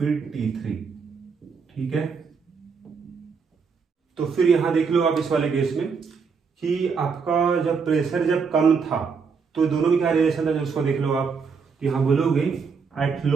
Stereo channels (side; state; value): left; quieter; 5.5 dB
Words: T3। ठीक है, तो फिर यहाँ देख लो आप इस वाले केस में कि आपका जब प्रेशर जब कम था तो दोनों में क्या रिलेशन था, जब उसको देख लो आप, तो यहाँ बोलोगे एट